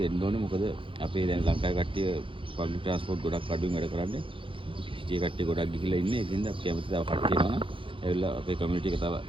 එන්න ඕනේ. මොකද අපේ දැන් ලංකාවේ කට්ටිය පබ්ලික් ට්‍රාන්ස්පෝර්ට් ගොඩක් අඩුවෙන් වැඩ කරන්නේ. සිටියේ කට්ටිය ගොඩක් ගිහිල්ලා ඉන්නේ. ඒකින්ද අපි කැමති තව කට්ටිය එනවා නම් ඇවිල්ලා අපේ කමියුනිටි එක තව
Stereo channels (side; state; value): left; late; 0.25 ms